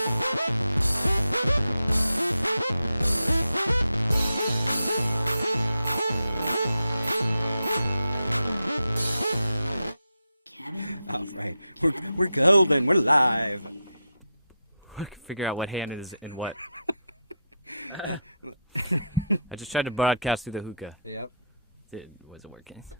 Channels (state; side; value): inverted; both; correlation -0.81